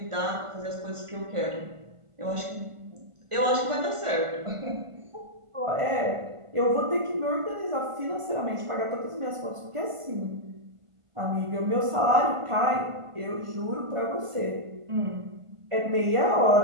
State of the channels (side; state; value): left; late; 1.5 ms